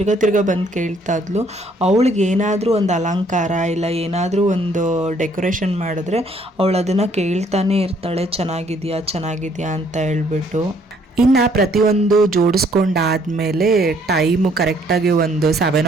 ತಿರ್ಗ ಬಂದು ಕೇಳ್ತಾ ಇದ್ಲು. ಅವಳಿಗೆ ಏನಾದರೂ ಒಂದು ಅಲಂಕಾರ ಇಲ್ಲ ಏನಾದರೂ ಒಂದು ಡೆಕೋರೇಷನ್ ಮಾಡಿದ್ರೆ ಅವಳು ಅದನ್ನು ಕೇಳ್ತಾನೆ ಇರ್ತಾಳೆ, ಚೆನ್ನಾಗಿದೆಯಾ ಅಂತ ಹೇಳ್ಬಿಟ್ಟು. ಇನ್ನು ಪ್ರತಿಯೊಂದು ಜೋಡಿಸ್ಕೊಂಡಾದಮೇಲೆ ಟೈಮು ಕರೆಕ್ಟಾಗಿ ಒಂದು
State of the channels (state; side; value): normal; both; correlation 0.64